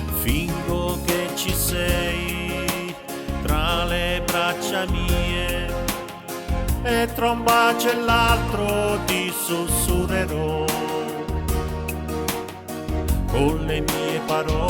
Fingo che ci sei tra le braccia mie, e tra un bacio e l'altro ti sussurrerò con le mie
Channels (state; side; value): identical; both; correlation 1.00